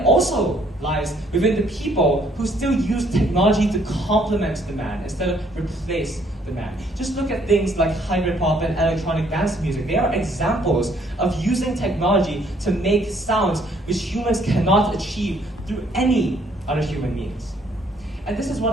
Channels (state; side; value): normal; both; correlation 0.65